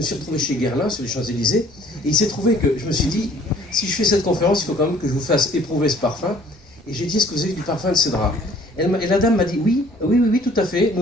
suis retrouvé chez Guerlain sur les Champs-Élysées, et il s'est trouvé que je me suis dit, si je fais cette conférence, il faut quand même que je vous fasse éprouver ce parfum, et j'ai dit, est-ce que vous avez du parfum de cédra? Et la dame m'a dit, oui, tout à fait,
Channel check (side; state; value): both; normal; correlation 0.56